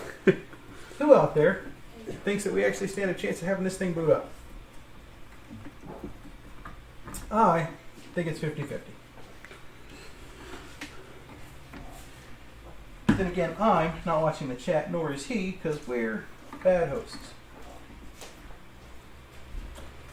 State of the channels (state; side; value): identical; both; correlation 1.00